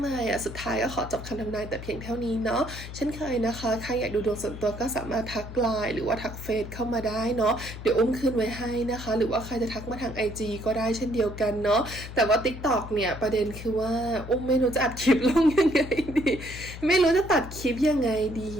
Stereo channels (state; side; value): noise; left; hum, 11 dB below the sound